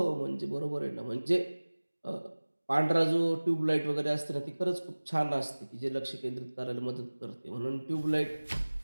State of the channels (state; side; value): inverted; both; correlation -1.00